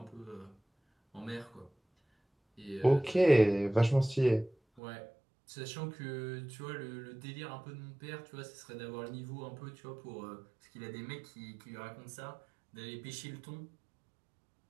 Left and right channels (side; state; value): left; drops out; at 4.8 s